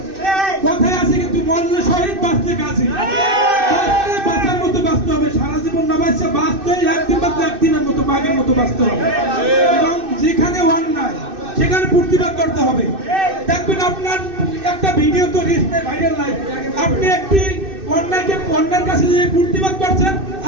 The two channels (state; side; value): late; left; 2.6 ms